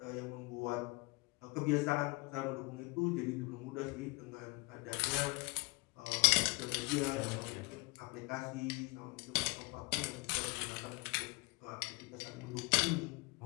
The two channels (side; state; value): right; quieter; 27.5 dB